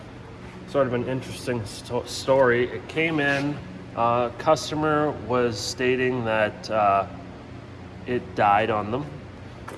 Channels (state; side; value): identical; both; correlation 1.00